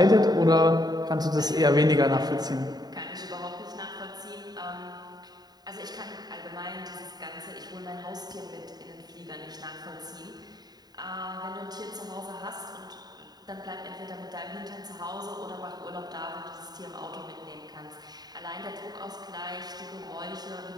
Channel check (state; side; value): late; left; 0.20 ms